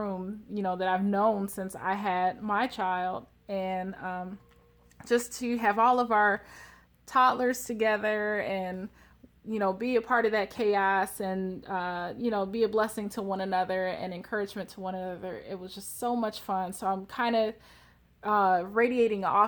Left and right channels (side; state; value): both; identical; correlation 1.00